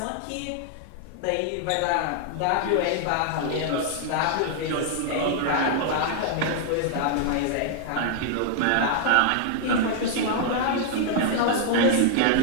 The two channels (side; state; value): both; different; correlation 0.00